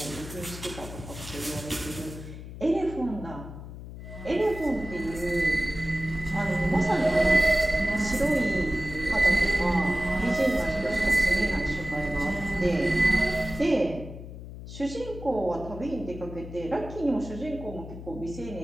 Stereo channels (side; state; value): left; noise; hum, 12 dB below the sound